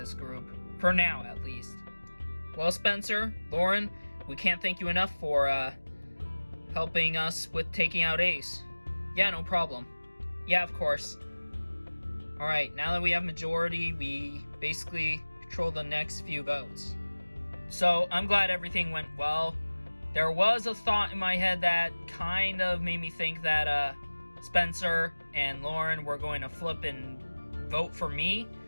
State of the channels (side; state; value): both; inverted; correlation -1.00